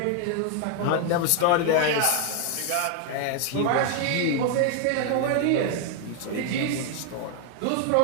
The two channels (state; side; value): different; both; correlation 0.00